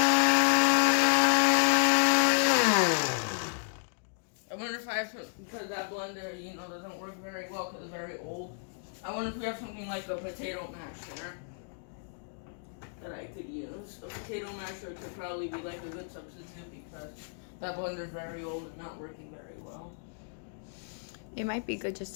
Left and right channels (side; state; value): right; silent; digital silence